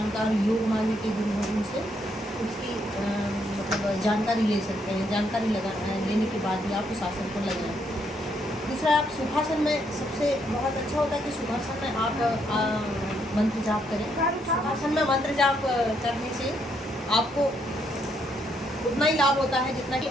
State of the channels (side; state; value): both; normal; correlation 0.74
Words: योग मार्ग के गुरु हैं उनसे उसकी मतलब जानकारी ले सकते हैं। जानकारी लेने के बाद ही आप उस आसन को लगाएं। दूसरा, आप सुखासन में सबसे बहुत अच्छा होता है कि सुखासन में आप मंत्र जाप करें। सुखासन में मंत्र जाप करने से आपको उतना ही लाभ होता है जितना कि